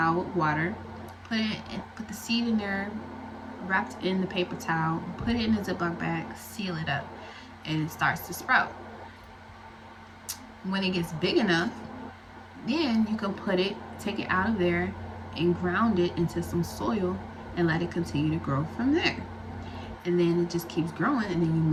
with water, put the seed in there, wrapped in the paper towel, put it in a Ziploc bag, seal it up, and it starts to sprout. When it gets big enough, then you can take it out of there and ground it into some soil and let it continue to grow from there. And then it just keeps growing, and then you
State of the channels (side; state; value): both; identical; correlation 1.00